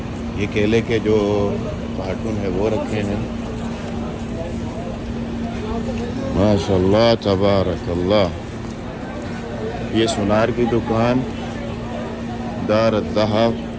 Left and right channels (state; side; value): identical; both; correlation 1.00